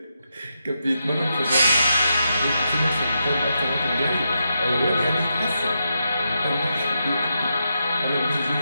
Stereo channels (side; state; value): both; inverted; correlation -0.84